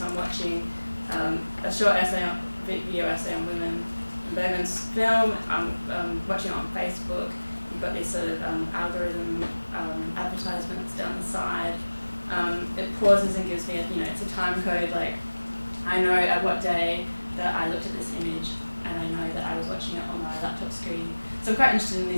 I'm watching a short video essay on women in Bergman's film. I'm watching it on Facebook. You've got these sort of algorithm advertisements down the side. It pauses and gives me it's a time code. Like I know at what day that I looked at this image, and I know that I was watching it on my laptop screen. So I'm quite interested in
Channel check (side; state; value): both; inverted; correlation -1.00